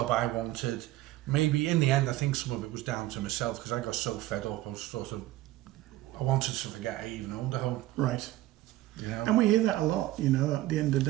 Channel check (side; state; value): left; quieter; 15.9 dB